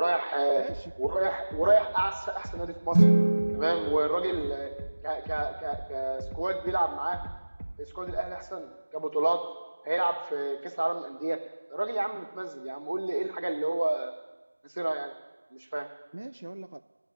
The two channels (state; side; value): inverted; both; correlation -1.00